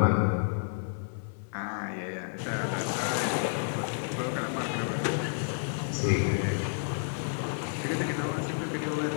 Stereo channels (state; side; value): silent; right; 57 dB below the other